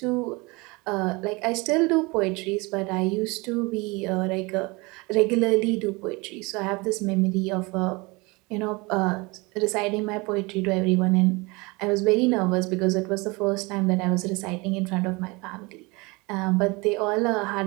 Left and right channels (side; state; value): left; quieter; 25.7 dB